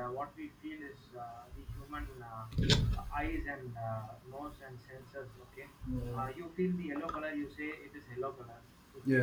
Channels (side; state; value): both; identical; correlation 1.00